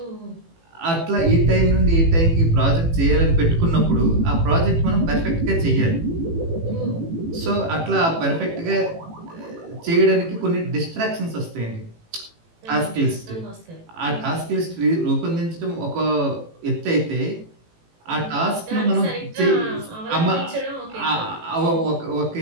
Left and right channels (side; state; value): left; late; 18 ms